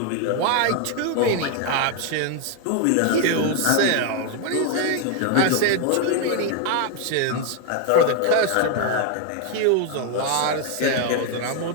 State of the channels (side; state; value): both; different; correlation 0.00